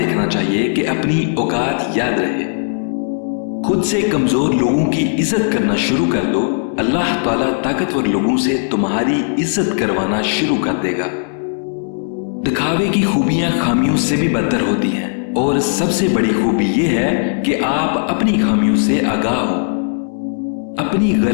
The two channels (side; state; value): right; silent; digital silence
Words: चाहिए कि अपनी औकात याद रहे। खुद से कमजोर लोगों की इज्जत करना शुरू कर दो, अल्लाह ताला ताकतवर लोगों से तुम्हारी इज्जत करवाना शुरू कर देगा। दिखावे की खूबियां खामियों से भी बदतर होती हैं, और सबसे बड़ी खूबी यह है कि आप अपनी खामियों से आगाह हो। अपनी